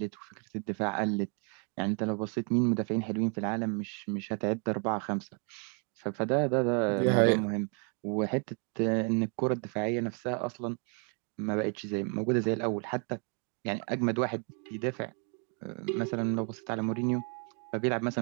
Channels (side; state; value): left; quieter; 39.5 dB